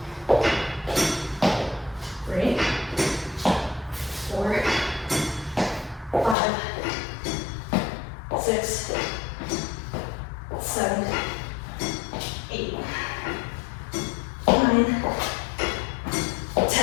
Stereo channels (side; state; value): right; drops out; at 6.4 s